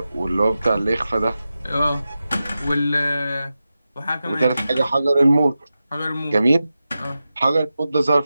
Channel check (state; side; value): inverted; both; correlation -0.92